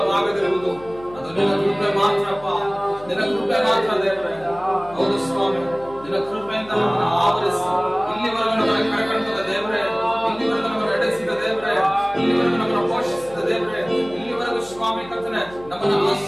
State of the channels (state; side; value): noise; left; hum, 21 dB below the sound